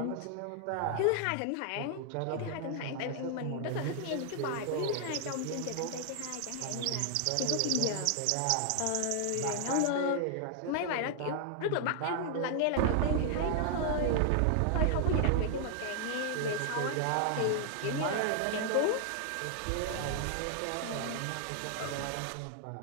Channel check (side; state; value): both; different; correlation 0.00